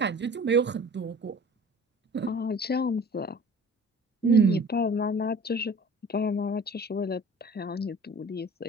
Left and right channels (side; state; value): both; normal; correlation 0.45